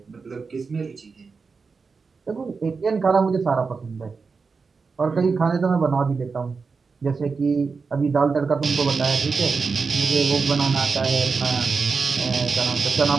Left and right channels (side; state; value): left; quieter; 4.8 dB